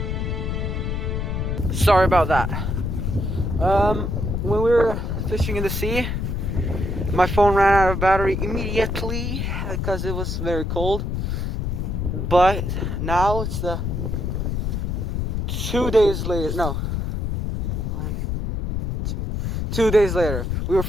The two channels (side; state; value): left; noise; rumble, 1 dB below the sound